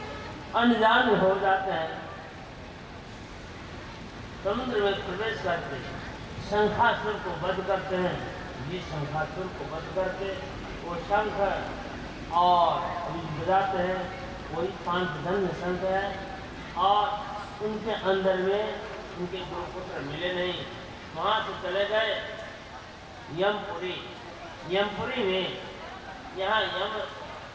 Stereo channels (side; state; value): both; identical; correlation 1.00